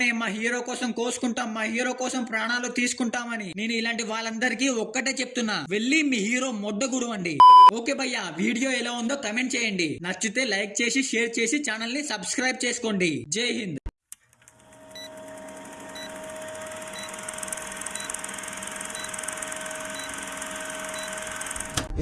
మా హీరో కోసం కోసుకుంటాం, మా హీరో కోసం ప్రాణాలు తీసుకుంటామని. నేను ఇలాంటి వాళ్ళందరికీ ఒక్కటే చెప్తున్నా, వెళ్ళి మీ హీరో మొడ్డగుడు అండి. ఓకే భయ్యా, వీడియో ఎలా ఉందో కమెంట్ చేయండి. నచ్చితే లైక్ చేసి షేర్ చేసి ఛానల్ ని సబ్స్క్రైబ్ చేసుకోండి. జై హింద్.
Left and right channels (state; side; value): identical; both; correlation 1.00